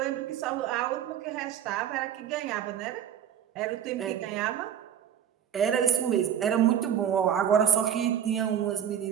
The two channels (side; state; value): left; quieter; 9.3 dB